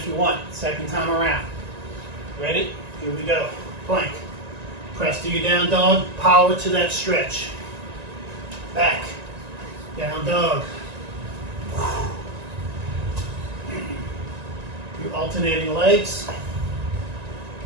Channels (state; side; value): late; left; 1.9 ms